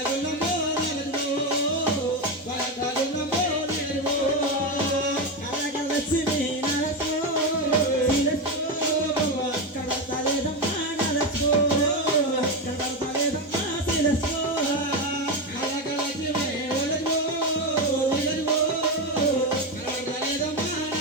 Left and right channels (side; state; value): both; normal; correlation 0.13